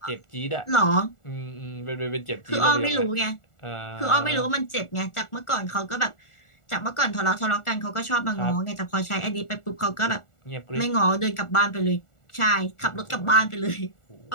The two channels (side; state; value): right; late; 1.4 ms